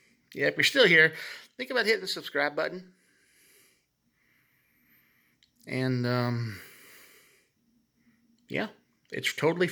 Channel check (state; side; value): identical; both; correlation 1.00